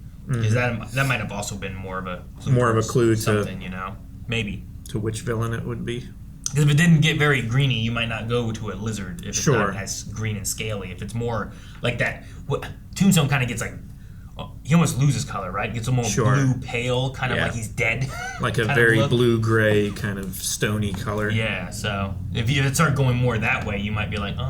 Because that might have also been more of a clue to something, maybe to which villain it would be. Because if it didn't get very greeny, you might not go to a lizard if it's Sure. not as green and scaly. If it's more like that, Tombstone kind of gets like, he almost loses color, right? Gets a more blue pale, kind of like he's dead. Like a kind of very look. blue-gray kind of stony color. Yeah, so if it started going more that way, you might be like,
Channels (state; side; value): identical; both; correlation 1.00